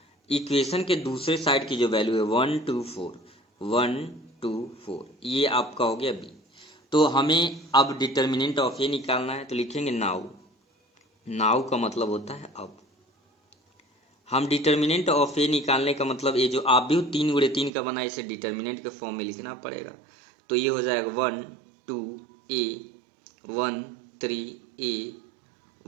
इक्वेशन के दूसरे साइड की जो वैल्यू है 1 2 4, 1 2 4, ये आपका हो गया बी। तो हमें अब डिटर्मिनेंट ऑफ ए निकालना है, तो लिखेंगे नाउ। नाउ का मतलब होता है अब। हम डिटर्मिनेंट ऑफ ए निकालने का मतलब ये जो आव्यूह 3 गुणे 3 का बना है इसे डिटर्मिनेंट के फॉर्म में लिखना पड़ेगा। तो ये हो जाएगा 1 2 ए 1 3 ए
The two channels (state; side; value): drops out; left; at 17.7 s